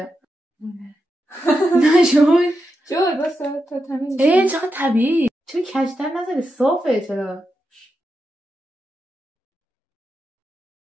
نشون شد بسه تا تمیز. چقدر طبیعی. چرا کجتر نزده؟ صافه. چرا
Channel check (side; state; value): both; normal; correlation 0.87